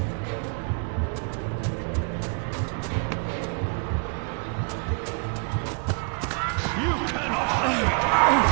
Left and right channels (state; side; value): quieter; left; 39.2 dB